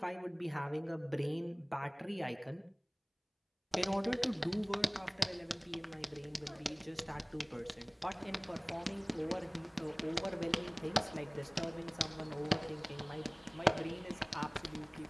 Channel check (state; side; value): identical; both; correlation 1.00